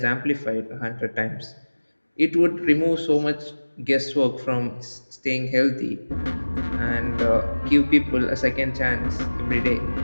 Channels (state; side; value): inverted; both; correlation -1.00